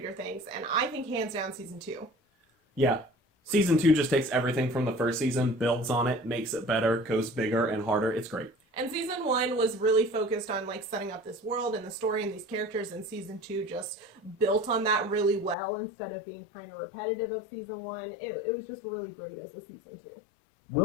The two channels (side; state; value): right; drops out; at 15.6 s